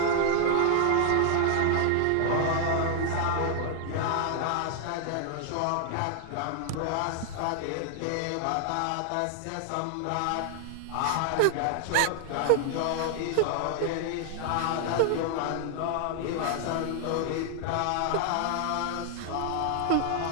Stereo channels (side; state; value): both; different; correlation -0.01